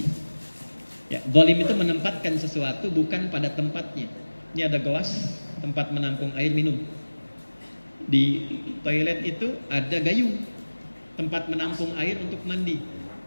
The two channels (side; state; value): both; inverted; correlation -1.00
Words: Ya, zalim itu menempatkan sesuatu bukan pada tempatnya. Ini ada gelas, tempat menampung air minum. Di toilet itu ada gayung, tempat menampung air untuk mandi.